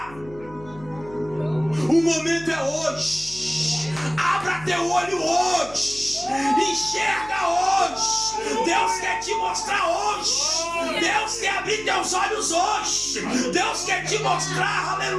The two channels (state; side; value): noise; left; hum, 20 dB below the sound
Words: O momento é hoje. Abra teu olho hoje. Enxerga hoje. Deus quer te mostrar hoje. Deus quer abrir teus olhos hoje. Deus quer te mostrar,